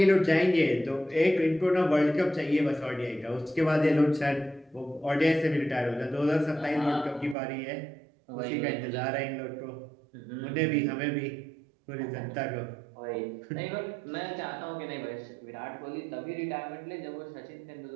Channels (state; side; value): drops out; left; at 7.4 s